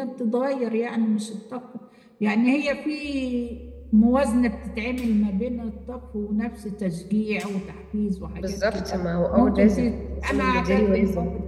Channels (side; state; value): both; identical; correlation 1.00